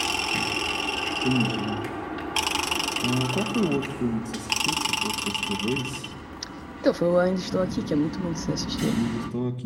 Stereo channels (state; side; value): identical; both; correlation 1.00